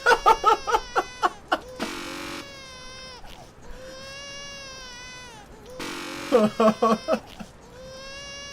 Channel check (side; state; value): both; identical; correlation 1.00